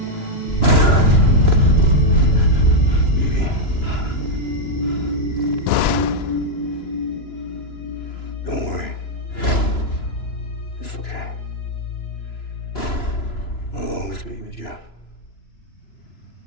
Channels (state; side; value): late; right; 2.9 ms